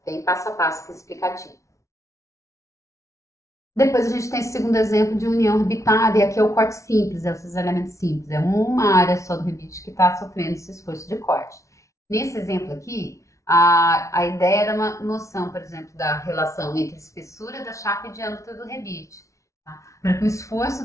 bem passo a passo aqui explicativo. Depois a gente tem esse segundo exemplo de união rebitada, e aqui é o corte simples, é o cisalhamento simples. É uma área só do rebite que está sofrendo esse esforço de corte. Nesse exemplo aqui, a ideia era uma noção, por exemplo, da relação entre a espessura da chapa e diâmetro do rebite. Tá? Para que o esforço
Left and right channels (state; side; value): late; right; 0.15 ms